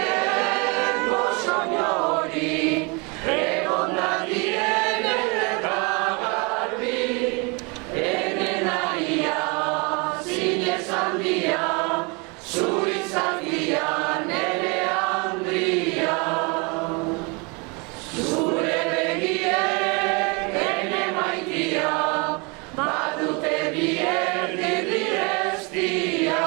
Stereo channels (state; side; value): quieter; left; 30.4 dB